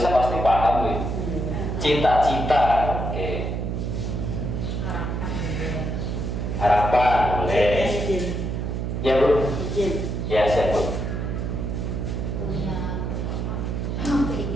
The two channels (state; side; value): noise; right; hum, 2 dB below the sound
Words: pasti paham nih. Cita-cita, oke. Harapan, boleh. Ya Bu. Ya siap Bu. Punya